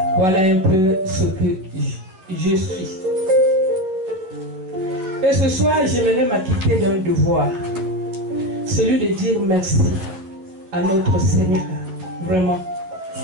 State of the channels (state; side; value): late; left; 11 ms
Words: Voilà un peu ce que je suis. Et ce soir, j'aimerais m'acquitter d'un devoir, celui de dire merci à notre Seigneur, vraiment.